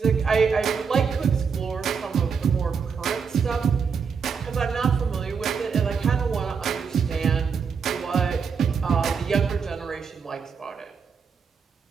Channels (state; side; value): quieter; left; 6.0 dB